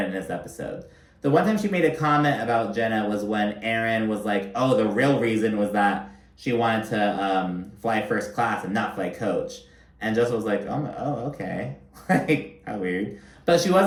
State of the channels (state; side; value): identical; both; correlation 1.00